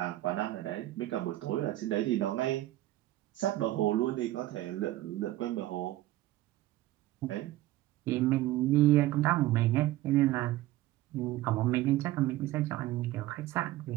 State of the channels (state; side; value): quieter; left; 15.8 dB